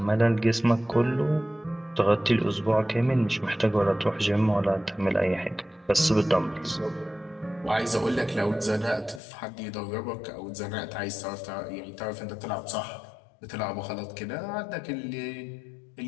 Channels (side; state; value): right; drops out; at 9.2 s